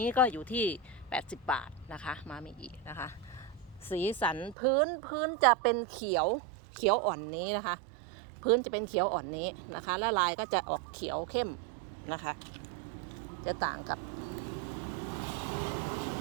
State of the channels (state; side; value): drops out; left; at 4.5 s